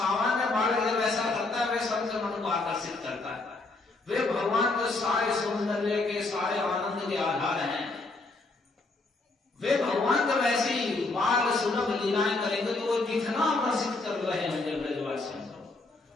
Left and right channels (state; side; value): quieter; right; 3.3 dB